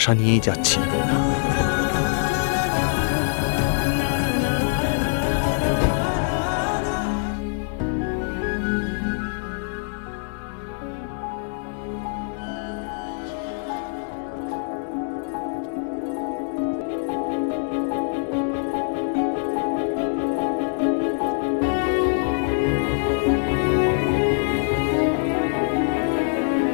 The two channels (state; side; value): silent; right; 61 dB below the other